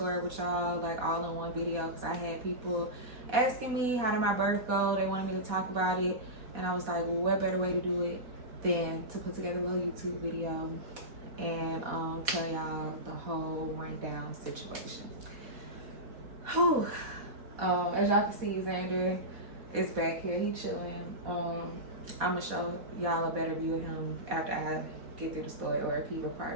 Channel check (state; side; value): late; left; 4.2 ms